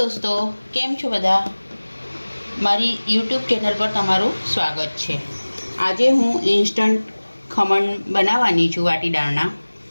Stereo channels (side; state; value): both; inverted; correlation -1.00